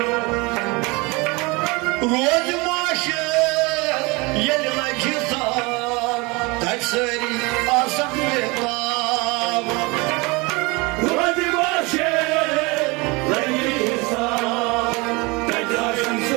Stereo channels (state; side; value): quieter; left; 26.0 dB